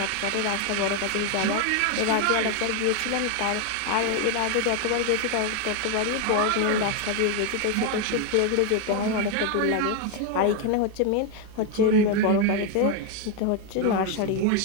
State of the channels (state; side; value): different; both; correlation 0.01